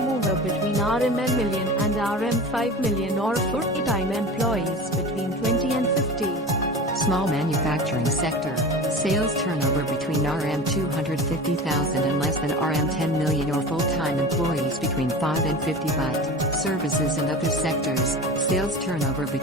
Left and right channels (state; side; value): normal; both; correlation 0.33